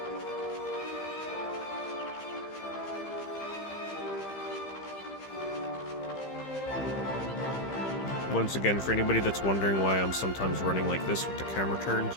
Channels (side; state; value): right; late; 15 ms